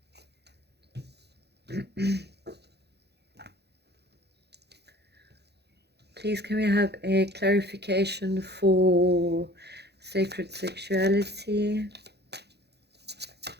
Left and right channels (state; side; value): late; left; 0.48 ms